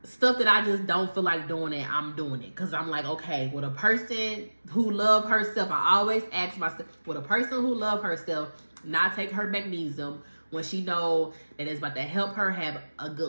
Stuff that I just don't feel like doing it, I'm doing it. Because I'm like, okay, with a person who love herself, I always ask myself, would a person who love herself not take her magnesium when she know that it's about to help her have a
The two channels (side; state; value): both; inverted; correlation -1.00